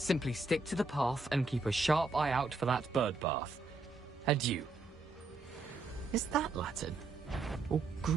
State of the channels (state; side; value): quieter; left; 3.5 dB